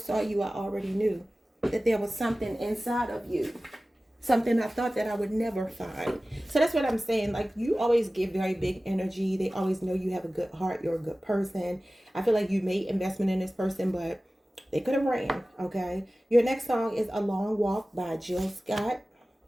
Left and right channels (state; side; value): normal; both; correlation 0.97